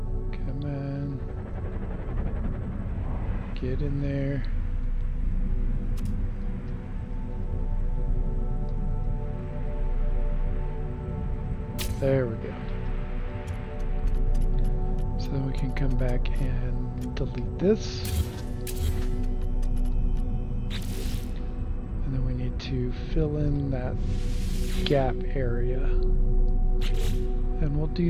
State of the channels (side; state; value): both; identical; correlation 1.00